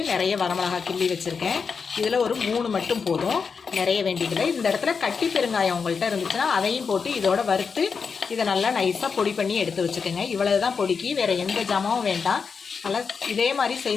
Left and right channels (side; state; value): right; quieter; 5.6 dB